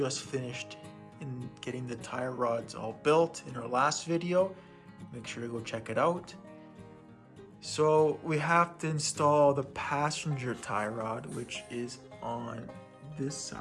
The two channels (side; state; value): both; identical; correlation 1.00